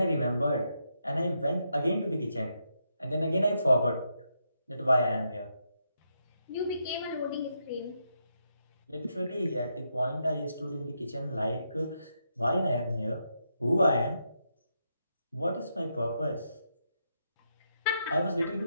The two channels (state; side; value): inverted; both; correlation -0.81